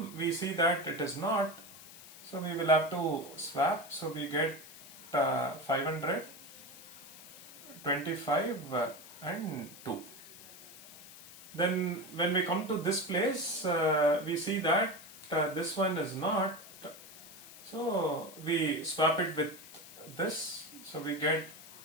we see that it is not. So we will have to swap. So we get 500, 25 and 2. Then when we come to this place, we see that this one is not. So we swap it with this. So we get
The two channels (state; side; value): noise; left; hiss, 17 dB below the sound